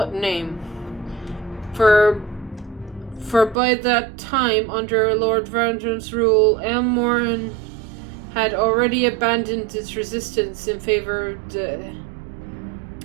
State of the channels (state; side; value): drops out; left; at 3.6 s